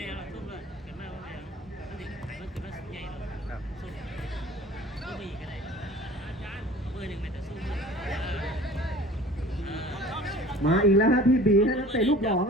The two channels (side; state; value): both; normal; correlation 0.45